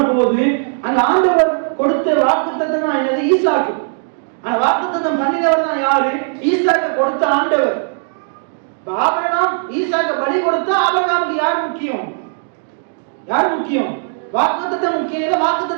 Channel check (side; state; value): left; silent; digital silence